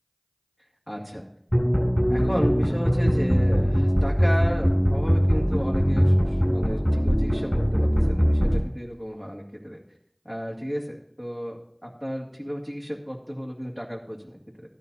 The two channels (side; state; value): both; identical; correlation 1.00